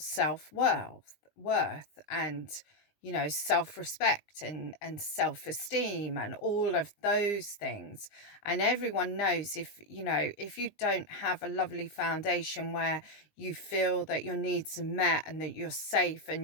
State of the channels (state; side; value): late; right; 19 ms